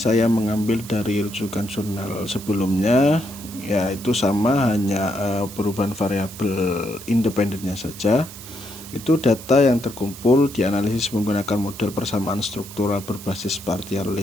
mengambil dari rujukan jurnal sebelumnya, yaitu sama, hanya perubahan variabel independennya saja. Itu data yang terkumpul dianalisis menggunakan model persamaan struktural berbasis partial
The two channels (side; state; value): right; noise; hiss, 15 dB below the sound